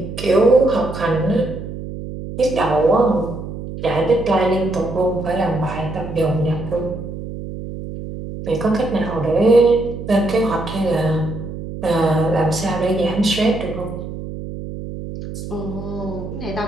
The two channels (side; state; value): right; noise; hum, 9 dB below the sound